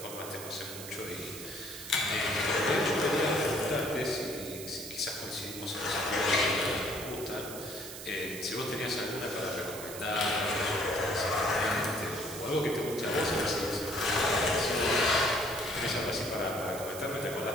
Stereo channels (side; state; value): right; noise; hiss, 11 dB below the sound